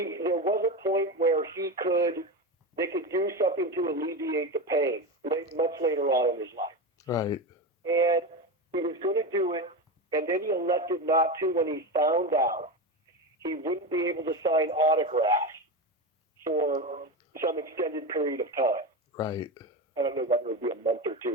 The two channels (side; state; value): both; normal; correlation 0.20